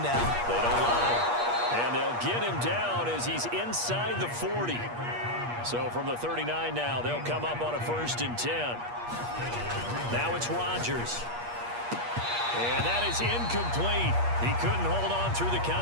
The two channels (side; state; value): left; late; 8.4 ms